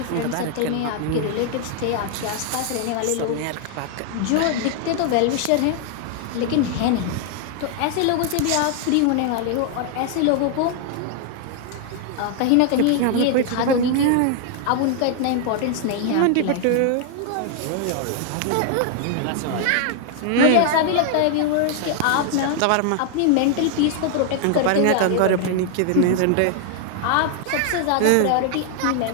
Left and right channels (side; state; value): both; different; correlation 0.00